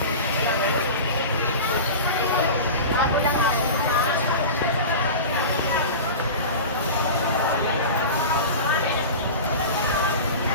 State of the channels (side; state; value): both; inverted; correlation -0.31